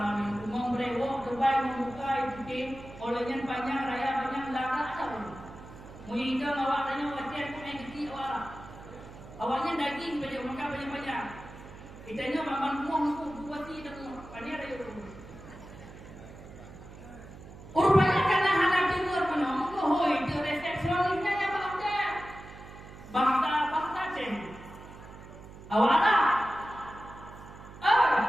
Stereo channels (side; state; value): right; noise; hum, 16 dB below the sound